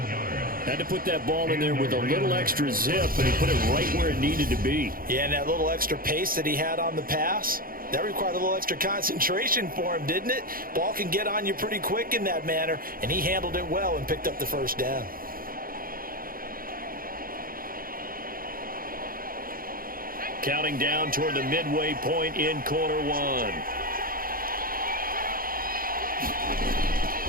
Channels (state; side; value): late; left; 0.42 ms